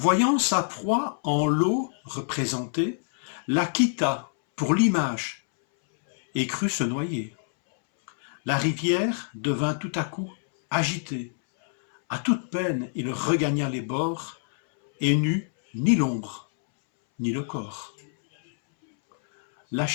sa proie en l'eau représentée, la quitta pour l'image et crut se noyer. La rivière devint tout à coup agitée. À toute peine, il regagna les bords et n'eut ni l'ombre, ni le corps.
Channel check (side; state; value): right; silent; 61 dB below the other